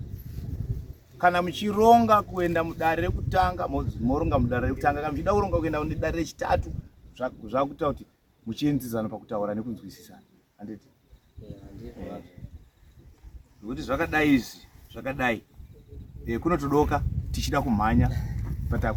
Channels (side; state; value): both; identical; correlation 1.00